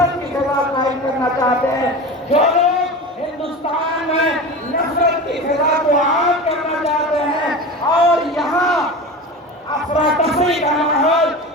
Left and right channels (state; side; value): normal; both; correlation 0.30